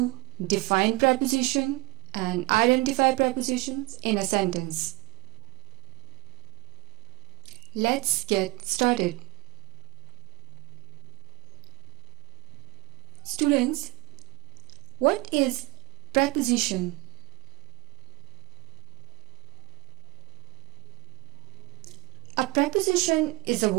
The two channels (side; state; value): left; quieter; 24.4 dB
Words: define preposition and identify prepositions in a sentence. Let's get started. Students, what is preposition? A preposition is a